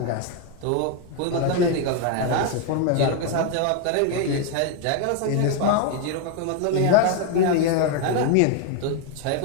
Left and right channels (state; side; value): different; both; correlation 0.01